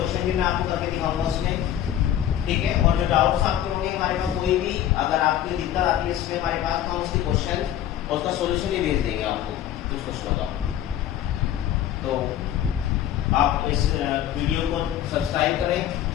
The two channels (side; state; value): right; quieter; 11.3 dB